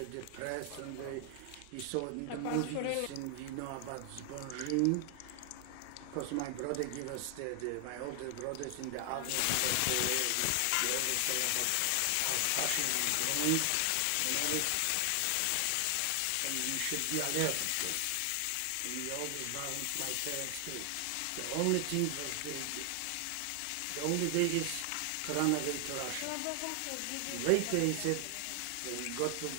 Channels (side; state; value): both; different; correlation 0.00